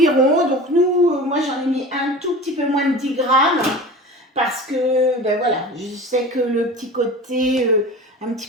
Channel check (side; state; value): both; normal; correlation 0.36